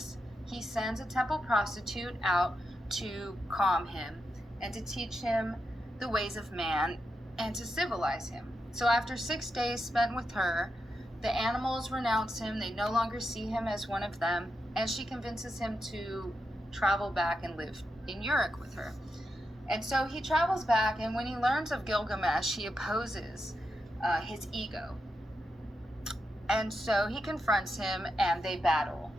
he sends a temple prostitute out to calm him and to teach him the ways of man and to civilize him. So after 6 days spent with her, the animals renounce him. They no longer see him as one of them, and she convinces him to travel back and live in Uruk with her. And so he travels back, and when he learns of Gilgamesh, he opposes his ego. And so he confronts him, and they battle.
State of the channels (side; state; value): both; normal; correlation 0.86